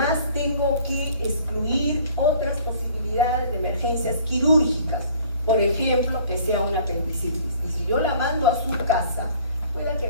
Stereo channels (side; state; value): both; inverted; correlation -0.53